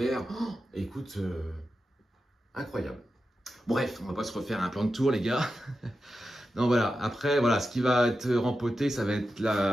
oh, écoute... incroyable. Bref, on va pas se refaire un plan de tour, les gars. Non, voilà. Après, voilà, ce qui va être rempoté, ça va être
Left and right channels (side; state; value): both; normal; correlation 0.91